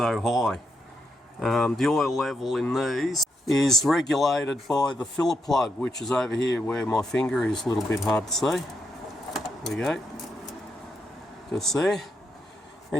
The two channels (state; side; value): normal; both; correlation 0.81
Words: high. The oil level in these is regulated by the filler plug, which is over here where my finger is, a little bit hard to see. There we go, just there.